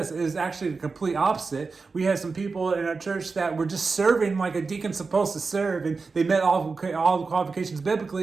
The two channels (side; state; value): left; quieter; 4.4 dB